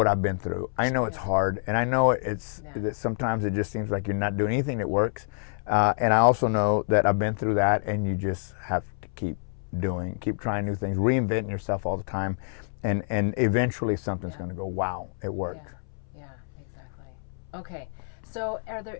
I've been through. I know it's hard, and I know that sometimes it just seems like you're not doing anything that works. And I also know that I've been through that, and you just have to keep trying new things, reinventing yourself all the time, and eventually something's going to go, wow, it worked. Yeah, exactly. Okay, so are there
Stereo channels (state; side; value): silent; right; 60 dB below the other